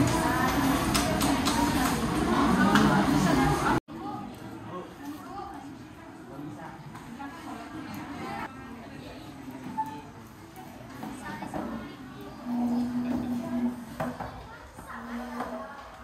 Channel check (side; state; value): both; identical; correlation 1.00